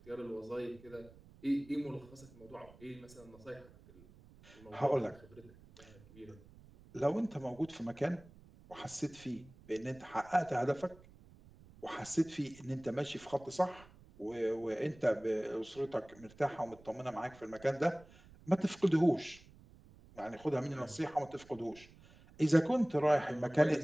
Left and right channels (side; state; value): right; noise; rumble, 23 dB below the sound